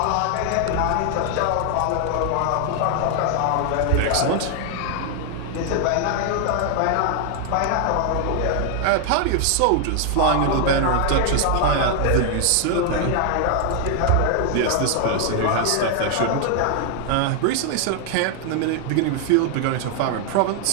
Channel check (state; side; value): different; both; correlation 0.00